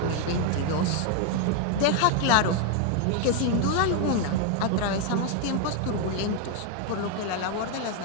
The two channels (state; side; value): different; both; correlation 0.00